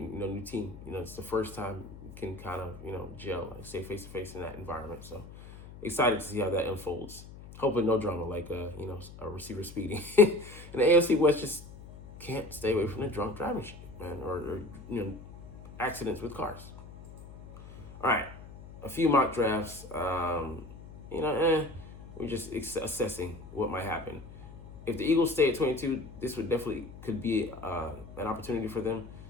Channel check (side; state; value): left; noise; hum, 16 dB below the sound